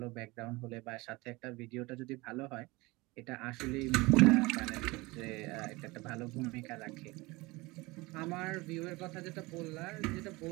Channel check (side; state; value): left; quieter; 23.1 dB